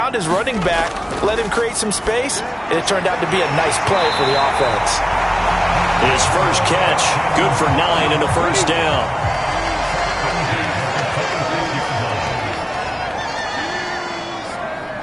his running back, let him create some space, and it turned out to be a nice play for the offense. His first catch, good for 9 and a first down.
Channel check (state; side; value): identical; both; correlation 1.00